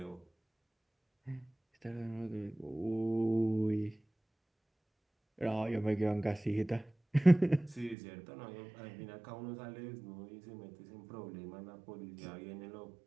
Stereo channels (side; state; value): left; drops out; at 8.0 s